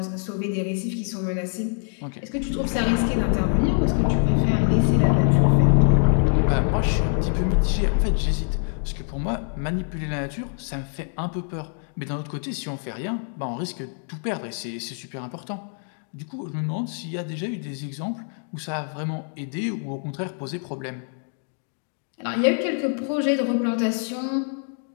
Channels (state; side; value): silent; right; 56 dB below the other